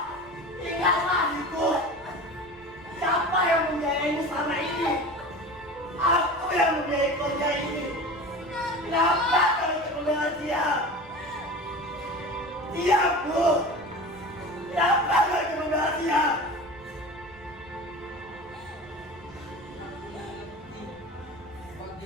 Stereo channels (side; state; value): right; noise; rumble, 25 dB below the sound